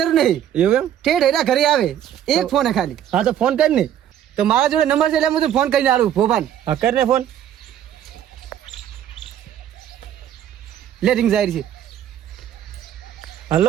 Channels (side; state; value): left; quieter; 10.5 dB